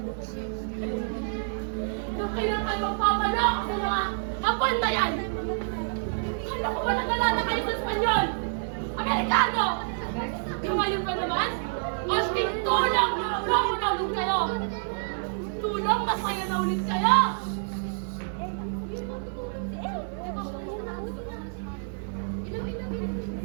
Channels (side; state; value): left; silent; 59 dB below the other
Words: Hanggang kailan kayo magpapaloko sa mga hapon na yan? Kala ko ba nag-alala kayo sa Espanyol? Amerikano! Yung ngayon pa naman, asking tulong na ulit kayo! Tulong, masaya na ulit kayo!